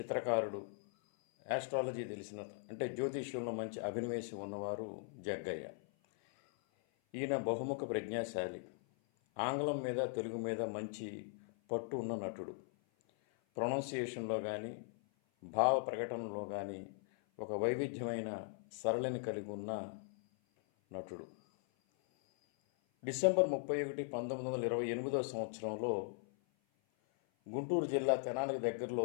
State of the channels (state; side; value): silent; right; 51 dB below the other